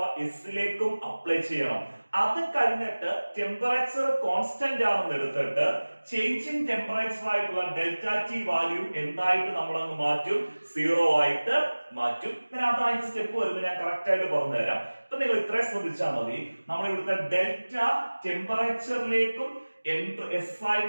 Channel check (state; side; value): inverted; both; correlation -1.00